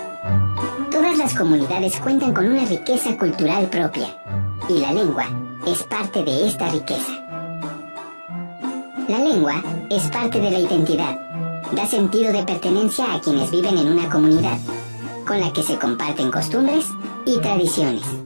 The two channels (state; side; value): inverted; both; correlation -1.00